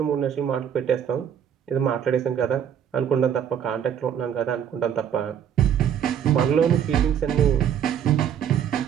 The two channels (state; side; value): quieter; left; 8.9 dB